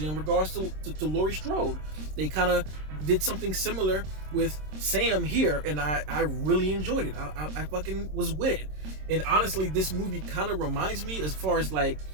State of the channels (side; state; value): left; late; 26 ms